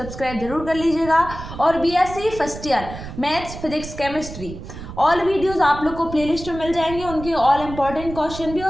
जरूर कर लीजिएगा। और BSc first year maths, physics, chemistry all videos आप लोग को प्लेलिस्ट में मिल जाएंगे, उनके ऑल इंपॉर्टेंट क्वेश्चन भी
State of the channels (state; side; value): noise; right; rumble, 11 dB below the sound